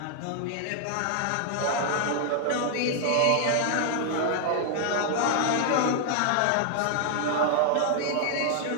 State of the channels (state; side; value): different; both; correlation 0.00